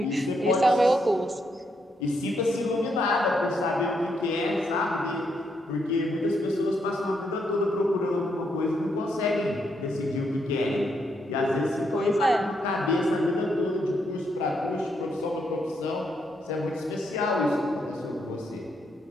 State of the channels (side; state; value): both; normal; correlation 0.77